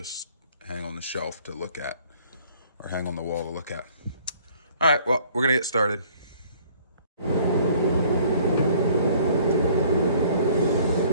hang on the shelf to look at, or hang on the wall to look at. All right, well, we're gonna get started.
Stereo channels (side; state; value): both; inverted; correlation -0.57